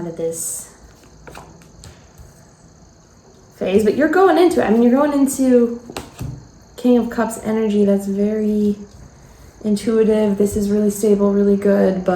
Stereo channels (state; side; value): identical; both; correlation 1.00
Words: of this phase. But you're going into it. I mean, you're going into King of Cups energy that's very intuitive. This is really stable, really good,